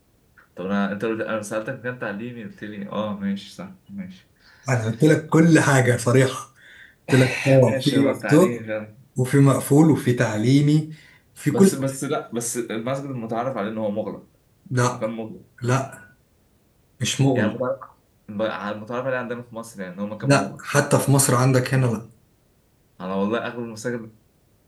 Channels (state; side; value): identical; both; correlation 1.00